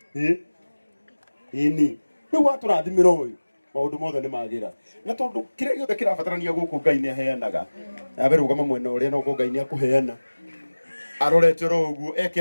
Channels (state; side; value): inverted; both; correlation -1.00